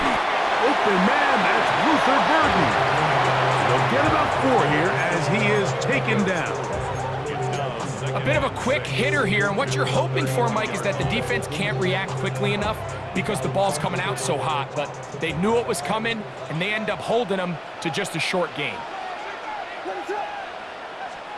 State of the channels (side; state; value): both; identical; correlation 1.00